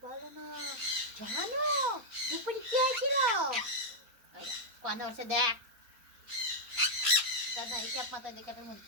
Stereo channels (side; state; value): left; late; 4.3 ms